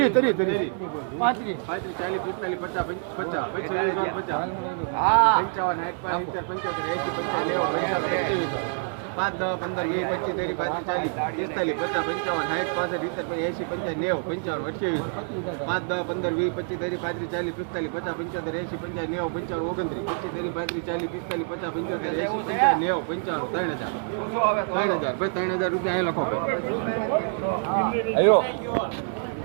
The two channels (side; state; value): left; silent; 59 dB below the other